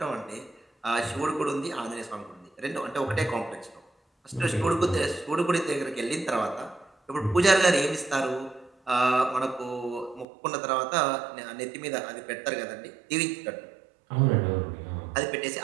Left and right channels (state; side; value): drops out; left; at 10.2 s